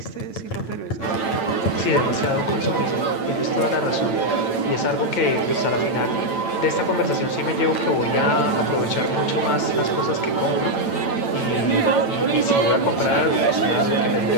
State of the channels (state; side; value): late; right; 9.0 ms